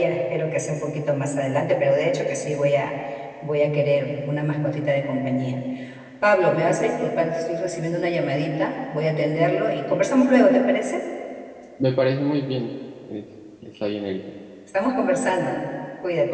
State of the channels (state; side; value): identical; both; correlation 1.00